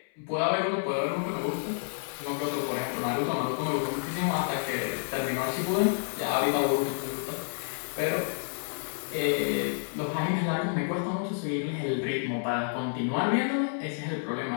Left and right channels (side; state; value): right; silent; 58 dB below the other